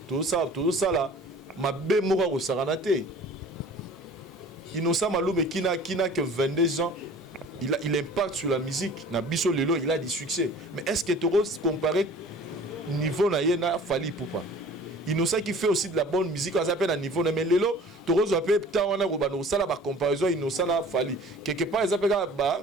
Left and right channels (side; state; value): both; normal; correlation 0.46